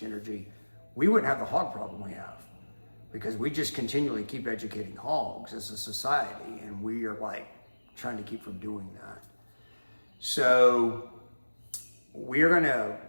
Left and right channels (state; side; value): inverted; both; correlation -1.00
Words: energy, we wouldn't have the hog problem we have, because we just continually keep educating hogs as a society, and we are like trying to keep from doing that. So we're gonna